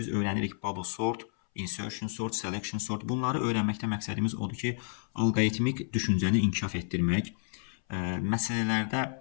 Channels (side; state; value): right; silent; 57 dB below the other